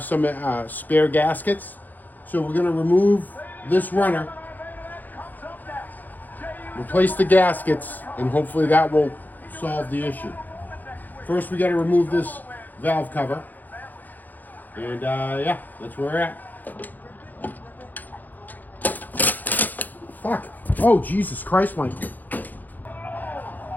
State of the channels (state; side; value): late; right; 0.084 ms